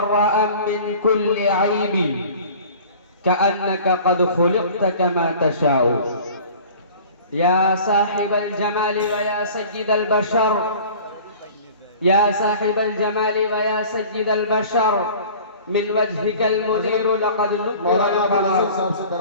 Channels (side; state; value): both; inverted; correlation -0.44